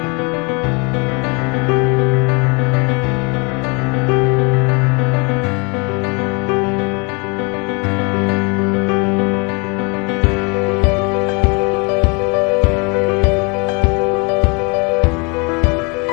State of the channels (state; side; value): quieter; right; 31.3 dB